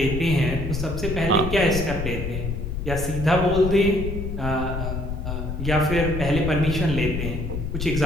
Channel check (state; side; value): noise; left; rumble, 4 dB below the sound